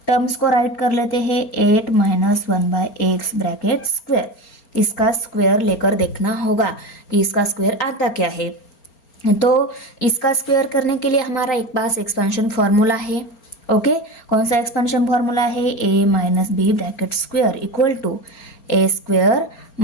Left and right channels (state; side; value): late; right; 4.3 ms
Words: टर्म्स को राइट कर लेते हैं 8 - 1/x ब्रैकेट स्क्वायर, इसका स्क्वायर लेकर देखना होगा कि इसका स्क्वायर आता क्या है। तो इसका स्क्वायर करने के लिए हमारा एक पास एक्सपेंशन फॉर्मूला है, ओके, कौन सा एक्सपेंशन फॉर्मूला है, a - b bracket square equal to a square